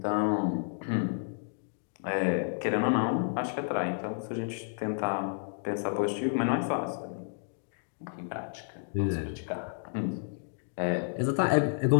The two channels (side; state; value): right; silent; digital silence